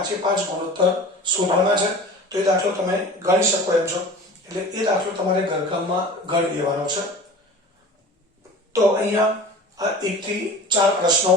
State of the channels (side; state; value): both; normal; correlation 0.39